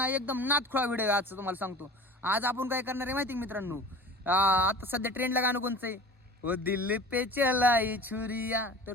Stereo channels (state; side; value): normal; both; correlation 0.39